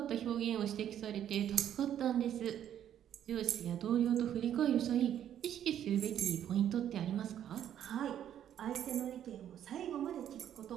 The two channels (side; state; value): left; quieter; 10.3 dB